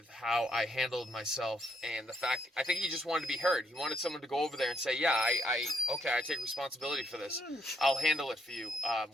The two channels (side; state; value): both; normal; correlation 0.74